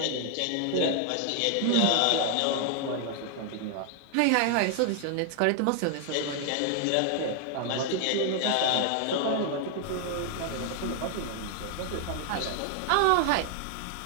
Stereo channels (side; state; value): both; different; correlation 0.00